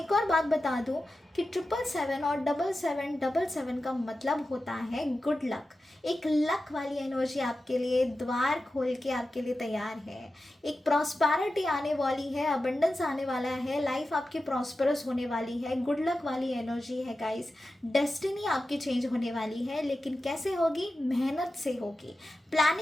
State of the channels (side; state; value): both; normal; correlation 0.92